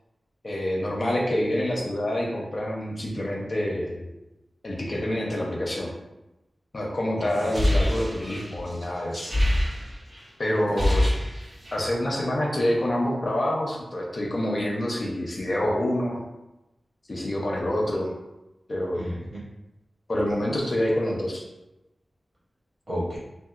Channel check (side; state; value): both; normal; correlation 0.96